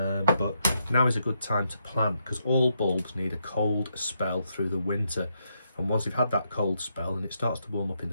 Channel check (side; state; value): both; inverted; correlation -0.80